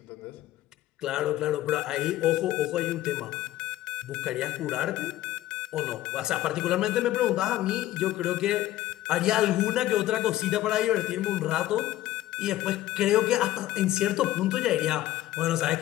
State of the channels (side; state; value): right; quieter; 14.8 dB